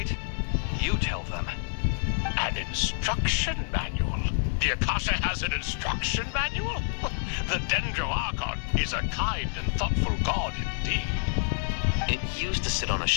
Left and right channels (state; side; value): silent; right; digital silence